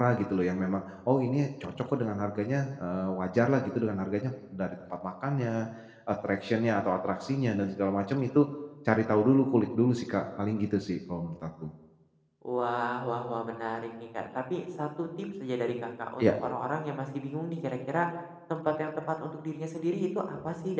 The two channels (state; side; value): identical; both; correlation 1.00